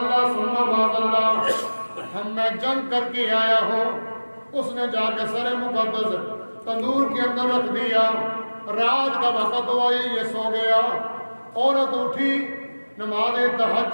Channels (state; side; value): inverted; both; correlation -1.00